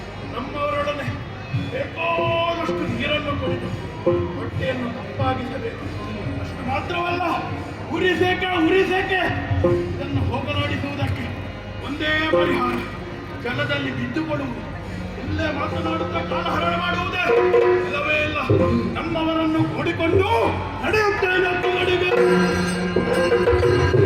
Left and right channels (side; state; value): both; identical; correlation 1.00